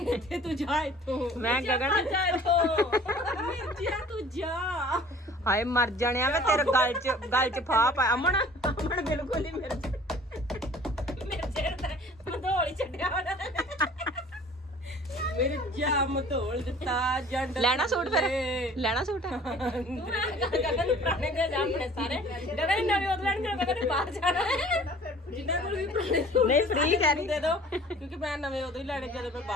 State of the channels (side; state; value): both; normal; correlation 0.49